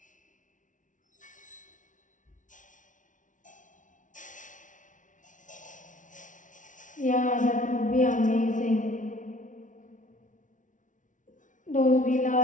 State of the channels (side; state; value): right; late; 0.37 ms